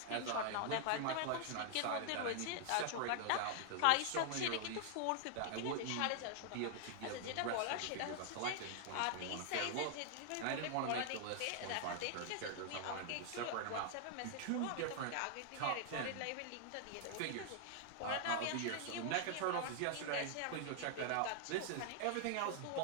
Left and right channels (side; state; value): both; different; correlation 0.00